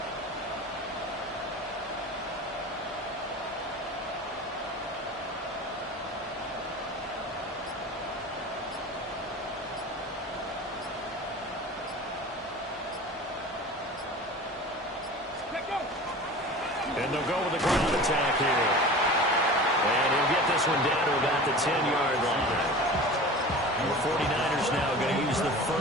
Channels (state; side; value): normal; both; correlation 0.36